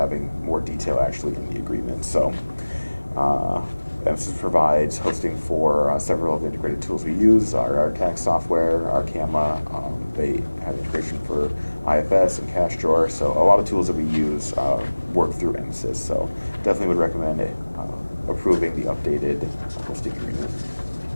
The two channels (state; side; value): inverted; both; correlation -1.00